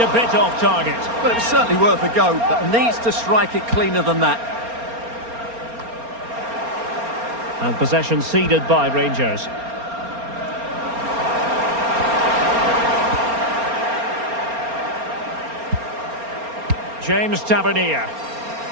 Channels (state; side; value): late; left; 4.3 ms